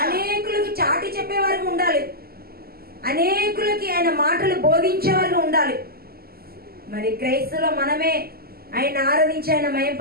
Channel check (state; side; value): late; left; 0.45 ms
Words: అనేకులకి చాటి చెప్పేవారికి ఉండాలి, అనేకులకి ఆయన మాటలు బోధించేవారికి ఉండాలి. మరి క్రైస్తులో మనమే ఆయన ఆరాధించి ఆయన